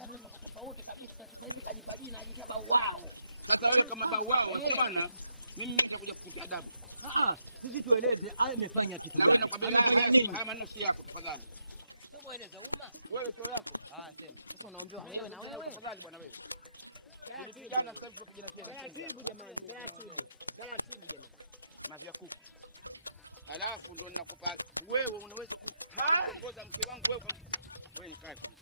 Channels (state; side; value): inverted; both; correlation -0.82